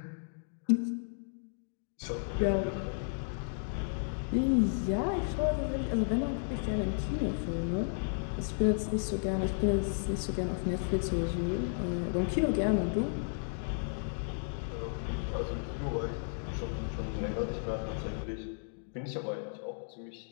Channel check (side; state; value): right; silent; digital silence